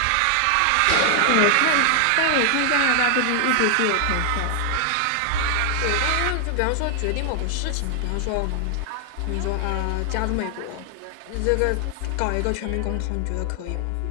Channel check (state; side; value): different; both; correlation 0.00